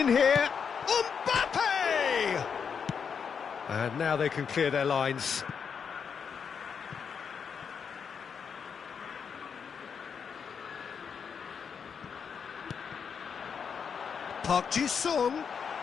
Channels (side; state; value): right; quieter; 6.6 dB